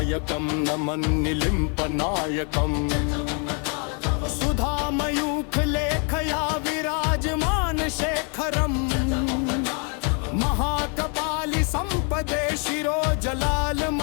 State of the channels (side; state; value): right; quieter; 37.9 dB